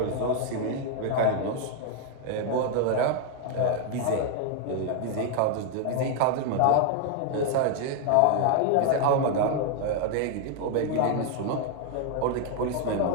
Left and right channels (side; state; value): both; different; correlation 0.00